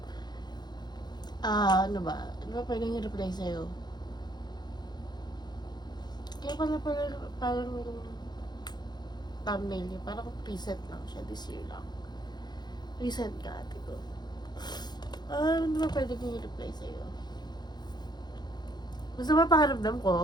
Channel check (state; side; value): late; right; 0.21 ms